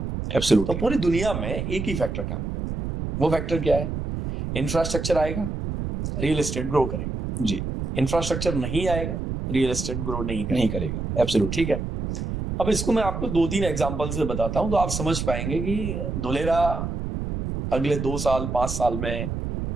एब्सोल्युटली। तो पूरी दुनिया में एक ही फैक्टर काम करता है, वो फैक्टर क्या है? इंफ्रास्ट्रक्चर आएगा, रियल एस्टेट ग्रो करेगा। जी। इंफ्रास्ट्रक्चर नहीं आएगा, रियल एस्टेट ग्रो नहीं करेगा। एब्सोल्युटली। ठीक है। अब इसको मैं आपको 2-3 एग्जांपल से बताता हूं तो आप समझ पाएंगे कि धुलेरा अगले 2 साल 5 साल में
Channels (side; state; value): right; noise; rumble, 4 dB below the sound